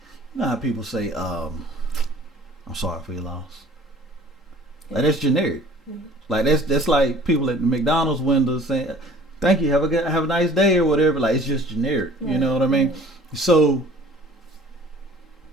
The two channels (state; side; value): normal; both; correlation 0.50